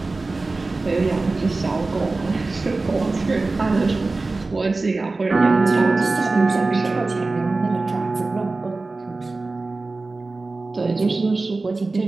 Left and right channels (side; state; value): left; quieter; 3.5 dB